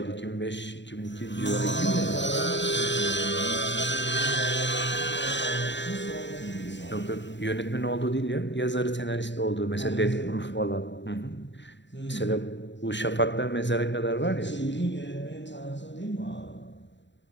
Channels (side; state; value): right; late; 0.52 ms